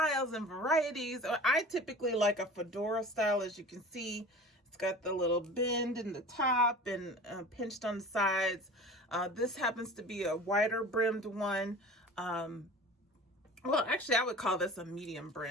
and varieties. I typically like a fedora style, as you can see. It's got the little bend in the top and pinched on the sides. This happens to be a wider brimmed one. Well, actually, I would call this a medium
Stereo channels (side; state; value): both; normal; correlation 0.39